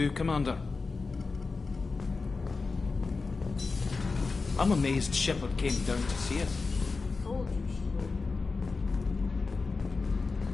Commander. I'm amazed Shepard came down to see us.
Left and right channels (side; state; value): right; quieter; 4.2 dB